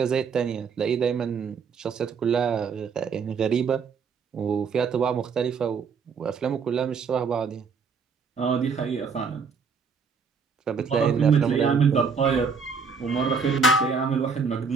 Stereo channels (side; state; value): left; quieter; 5.5 dB